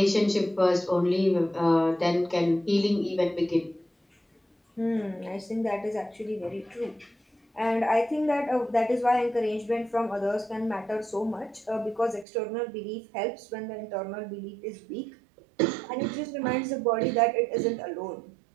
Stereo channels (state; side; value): drops out; left; at 12.2 s